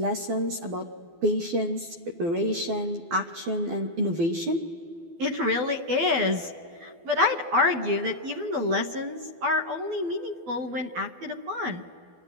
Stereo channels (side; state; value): left; late; 12 ms